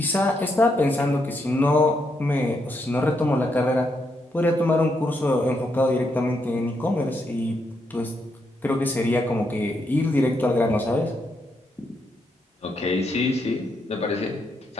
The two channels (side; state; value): both; normal; correlation 0.79